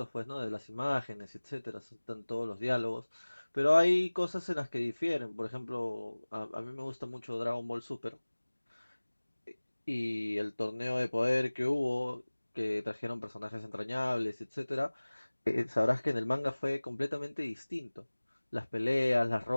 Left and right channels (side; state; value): both; inverted; correlation -1.00